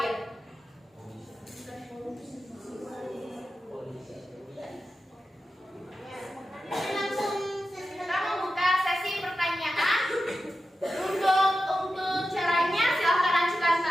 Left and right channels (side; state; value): both; normal; correlation 0.92